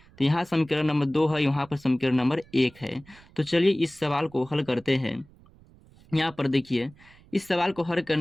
तो यहाँ समीकरण नंबर 2 है, यहाँ पर समीकरण नंबर 1 है। तो चलिए इस सवाल को हल करते हैं। यहाँ पर देखिए, इस सवाल को हल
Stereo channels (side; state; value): right; noise; rumble, 26 dB below the sound